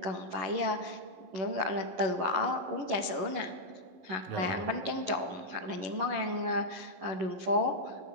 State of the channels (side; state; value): left; late; 11 ms